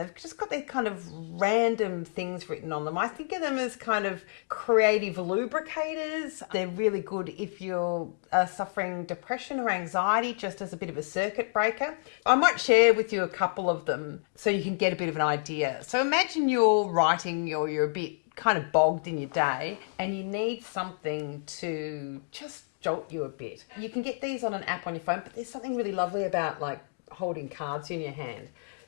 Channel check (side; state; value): right; silent; digital silence